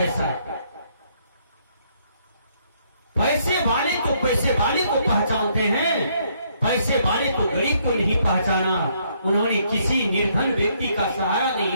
पैसे वाले तो पैसे वाले को पहचानते हैं, पैसे वाले तो गरीब को नहीं पहचाना। उन्होंने किसी निर्धन व्यक्ति का सहारा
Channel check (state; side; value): inverted; both; correlation -0.70